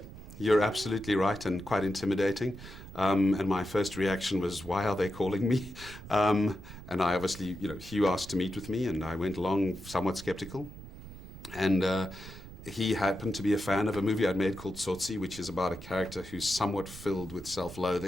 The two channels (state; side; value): noise; right; rumble, 14 dB below the sound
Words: you're absolutely right, and quite intimidating. And my first reaction was, why are they calling me? And I obviously, Hugh asked to meet with me, and I went along somewhat skeptical. And he happened to be a fan of a movie I'd made called Tsotsi, which is about a character who's somewhat filled with